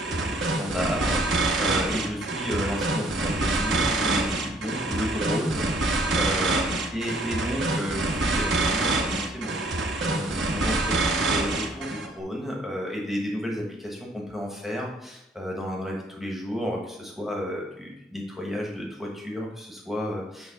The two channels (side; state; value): both; normal; correlation 0.62